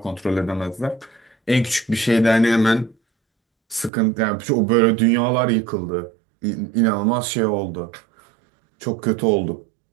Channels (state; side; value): drops out; left; at 3.9 s